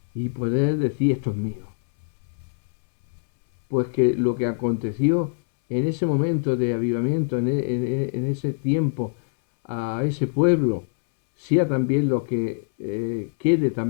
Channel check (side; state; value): right; silent; 63 dB below the other